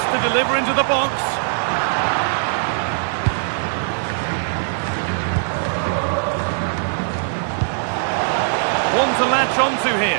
to deliver into the box. One to latch onto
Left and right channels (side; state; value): left; silent; digital silence